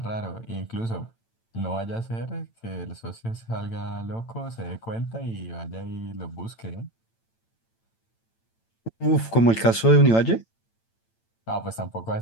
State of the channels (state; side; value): late; right; 8.9 ms